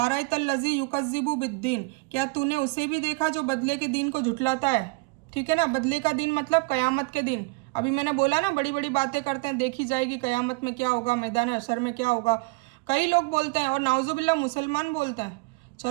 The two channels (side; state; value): left; quieter; 26.6 dB